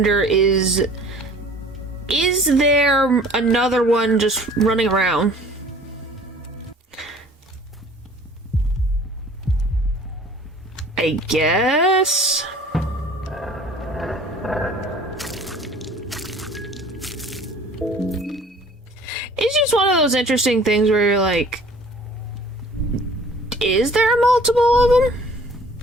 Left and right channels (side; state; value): both; normal; correlation 0.50